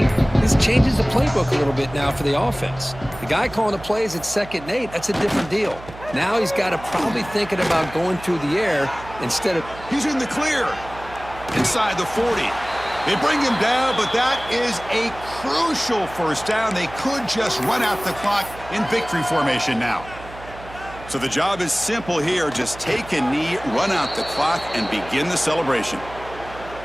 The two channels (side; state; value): right; noise; hum, 16 dB below the sound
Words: this changes the playbook a little bit now for the offense. The guy calling the plays at 2nd and 8, that's a different deal. Now he's got to probably thinking about going through the air instead of... He's in the clear. Inside the 40. They bring him down, but that is a crucial first down. They could just run out the clock in victory formation now. So the job is simple here. Just take a knee, run out the clock, and begin the celebration.